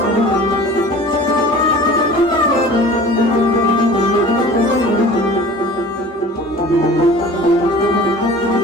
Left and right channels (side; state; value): both; normal; correlation 0.42